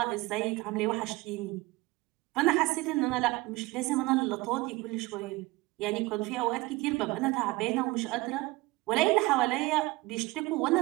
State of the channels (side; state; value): left; quieter; 21.5 dB